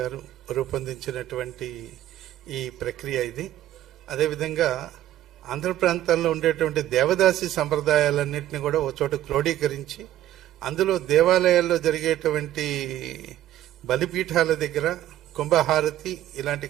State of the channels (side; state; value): left; quieter; 12.9 dB